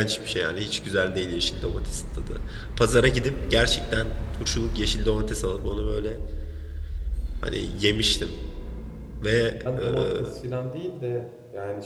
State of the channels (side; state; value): both; identical; correlation 1.00